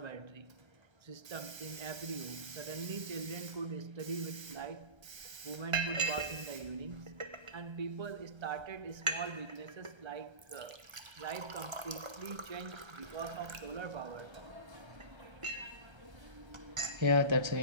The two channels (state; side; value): late; left; 1.3 ms